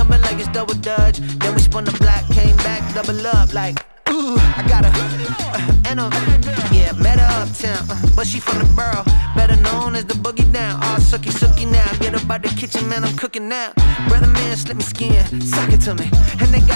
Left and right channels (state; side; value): inverted; both; correlation -1.00